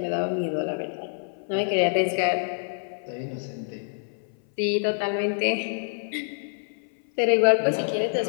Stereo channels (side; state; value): right; silent; 58 dB below the other